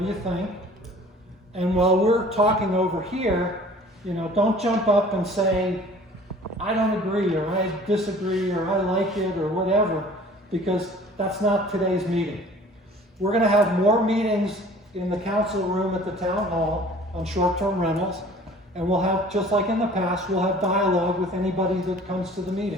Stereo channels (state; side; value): normal; both; correlation 0.48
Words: do you think? And while we're talking over here, don't jump up and say, I don't agree, or I disagree, or I like it, or whatever, because that's not today's meeting. We're going to have more meetings in the council room at the town hall on short-term rentals, and we'll have, just like in the past, we'll have dialogue with anybody that comes to the